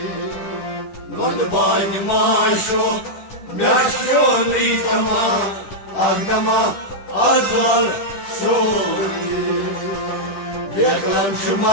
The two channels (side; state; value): right; late; 10 ms